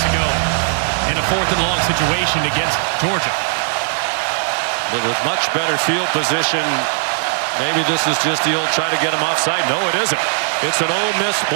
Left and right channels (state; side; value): silent; left; digital silence